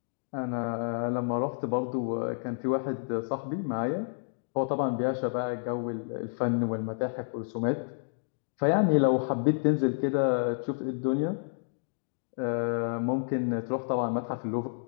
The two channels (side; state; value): right; silent; digital silence